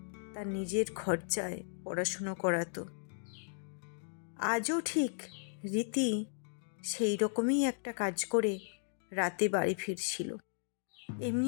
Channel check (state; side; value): silent; right; digital silence